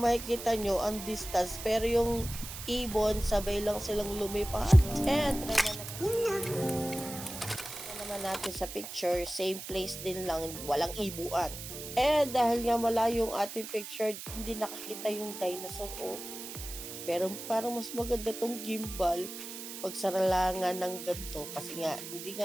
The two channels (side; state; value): right; noise; hiss, 10 dB below the sound